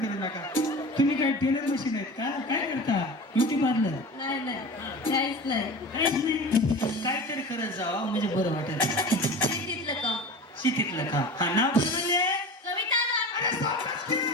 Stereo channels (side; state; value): both; normal; correlation 0.34